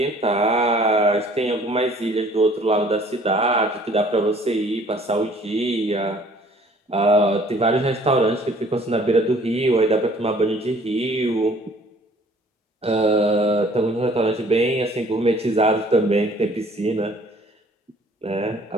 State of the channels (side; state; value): both; normal; correlation 0.55